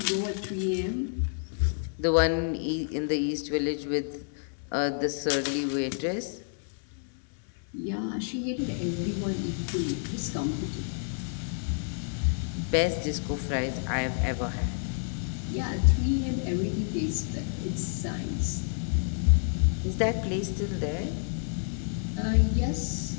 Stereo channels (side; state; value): right; silent; 58 dB below the other